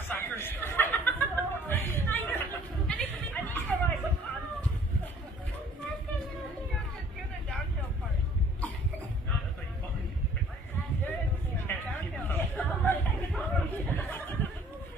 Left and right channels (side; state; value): both; normal; correlation 0.56